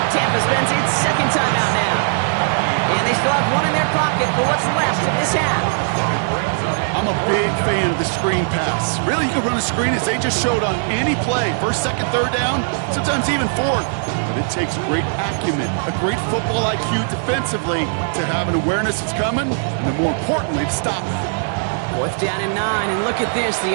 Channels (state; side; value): silent; left; digital silence